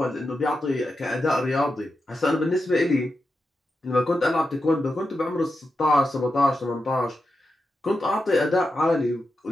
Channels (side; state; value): both; normal; correlation 0.89